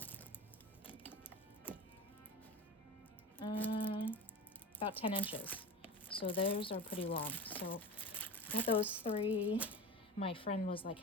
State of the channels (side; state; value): both; normal; correlation 0.31